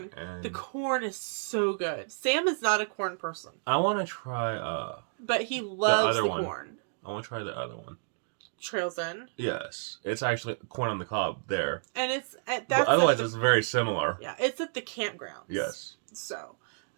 And the corn is so good. Sam is not a corn person. I want to try... but he loves the corn. I want to try the other one. Trails In. Yes. It's actually corn on the cob there. And it's... but otherwise, it's very similar. Yeah, it's at the campgrounds. Yes. So...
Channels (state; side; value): silent; left; digital silence